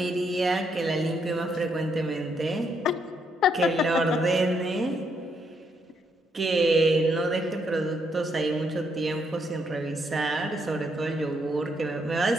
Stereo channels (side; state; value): both; normal; correlation 0.75